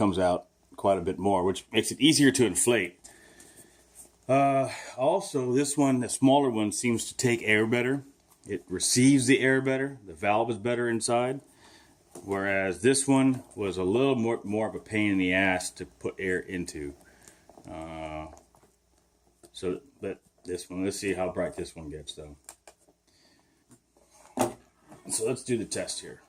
out quite a bit more, which makes it easier to inflate. Also, this one, the smaller one, seems to take air better. It receives the air better. The valve is better inside. Whereas this one was a little more of a pain in the ass to put air into. But this one, let's see how bright this one gets though. So let's do the test here.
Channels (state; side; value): identical; both; correlation 1.00